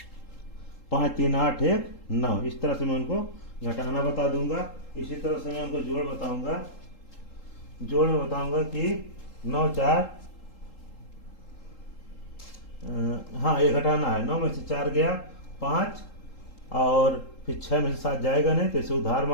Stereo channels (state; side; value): late; right; 3.8 ms